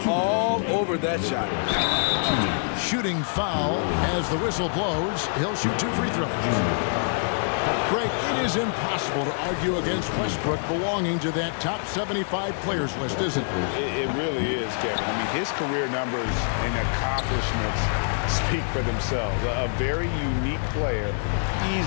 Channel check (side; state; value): right; silent; digital silence